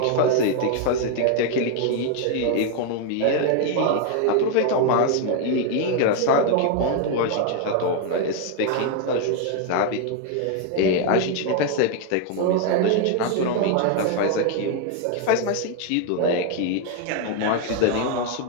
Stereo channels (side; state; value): both; different; correlation 0.01